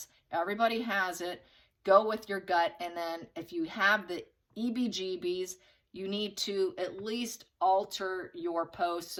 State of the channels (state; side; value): identical; both; correlation 1.00